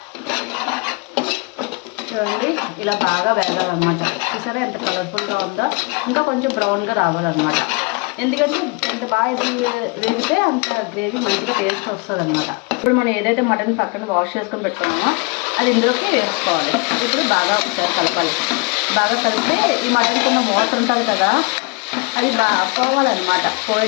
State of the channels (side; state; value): right; quieter; 29.8 dB